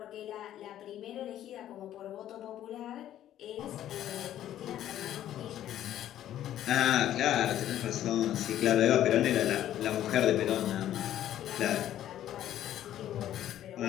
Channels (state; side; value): quieter; right; 12.0 dB